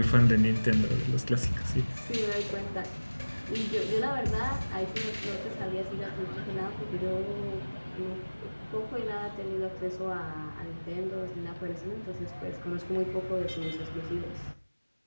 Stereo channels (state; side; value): inverted; both; correlation -1.00